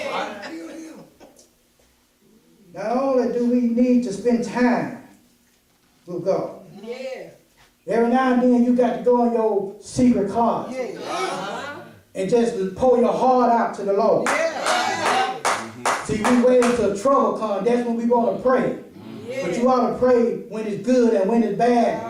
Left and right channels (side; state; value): both; identical; correlation 1.00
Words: Not only do we need to spend time with God. Every now and then you got to go in your secret closet and just pour your heart out to the Lord. See, we wait until trouble comes. That's when we want to pray. But you ought to pray when it's good and when it's